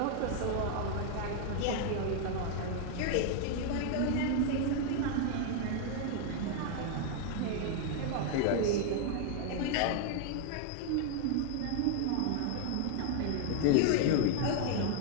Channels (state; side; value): different; both; correlation 0.00